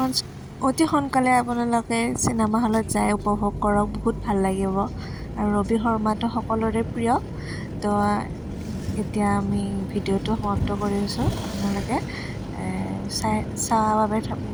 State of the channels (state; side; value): identical; both; correlation 1.00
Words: অতি সোনকালে আপোনালোকে চিনেমা হলত যাই উপভোগ কৰক, বহুত ভাল লাগিব। আৰু ৰবি শৰ্মাটো সকলোৰে প্ৰিয়। তো এতিয়া আমি ভিডিঅ'টো সমাপ্ত কৰিছোঁ। আপোনালোকে চোৱাৰ বাবে